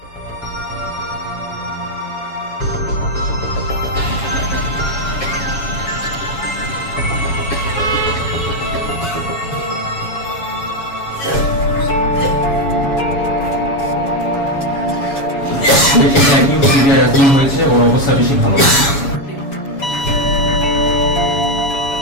হয়েছে ওর অবস্থা বেশি ভালো।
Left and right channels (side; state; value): right; late; 7.2 ms